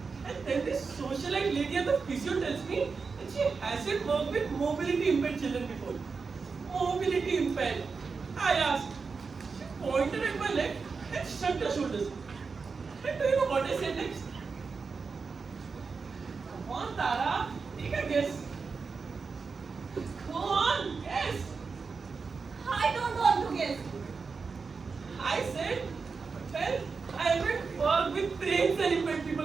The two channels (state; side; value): quieter; left; 4.9 dB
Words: And then this socialite lady at the physio tells me that she hasn't worked with mobility impaired children before. Mobility impaired. I asked. She pointed at my leg and shrugged her shoulders. And do you know what I said next? Come on, Tara. Take a guess. Go on, guess. I don't want to guess. I said, well, I haven't worked with brains and impaired